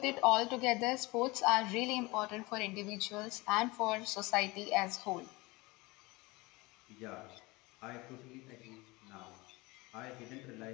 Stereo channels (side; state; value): right; quieter; 23.3 dB